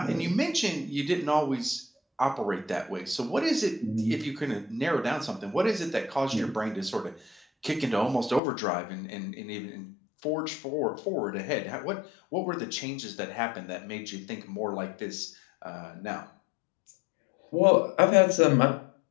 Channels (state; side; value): drops out; right; at 8.4 s